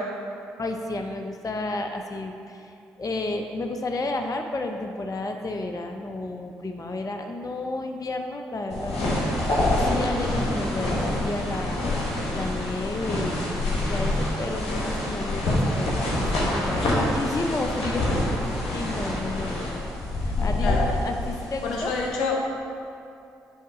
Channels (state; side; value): normal; both; correlation 0.73